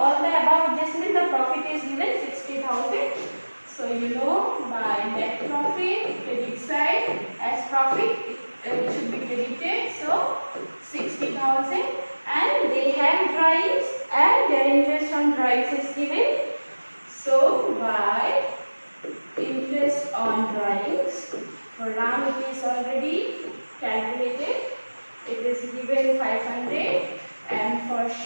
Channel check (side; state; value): both; inverted; correlation -1.00